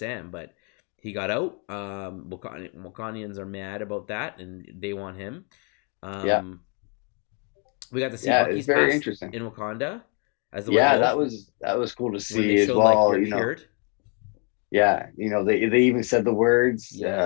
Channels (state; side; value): quieter; right; 36.2 dB